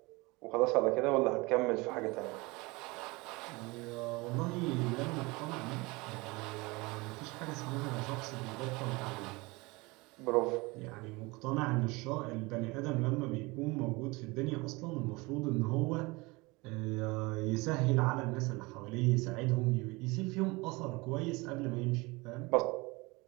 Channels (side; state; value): left; quieter; 24.4 dB